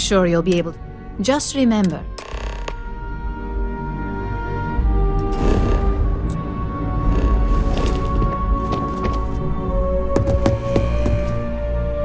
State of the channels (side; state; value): both; identical; correlation 1.00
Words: you'll be able to... Just remember...